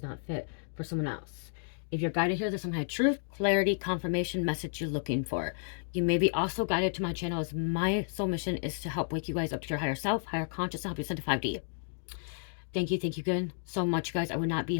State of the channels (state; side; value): silent; right; digital silence